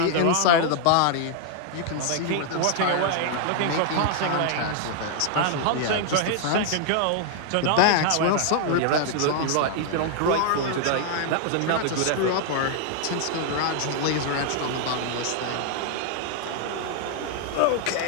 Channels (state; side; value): different; both; correlation 0.00